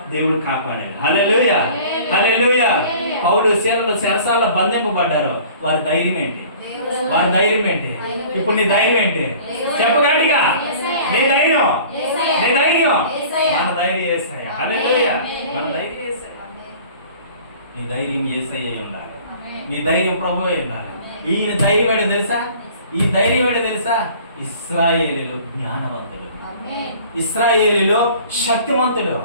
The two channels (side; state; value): both; inverted; correlation -0.47